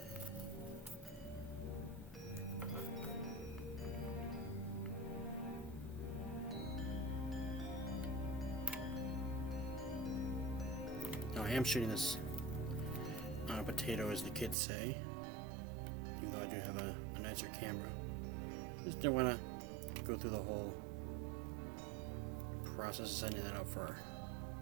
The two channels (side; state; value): left; drops out; at 14.6 s